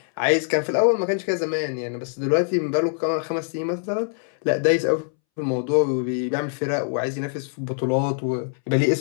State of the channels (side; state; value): right; silent; 63 dB below the other